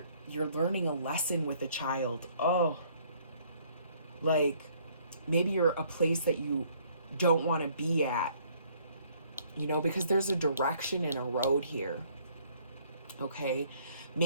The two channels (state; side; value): inverted; both; correlation -0.62